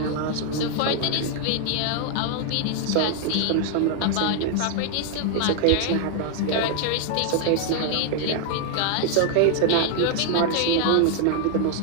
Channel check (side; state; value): both; different; correlation 0.00